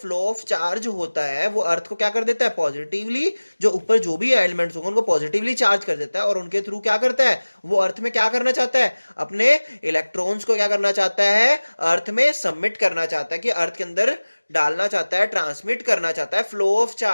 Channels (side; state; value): both; inverted; correlation -1.00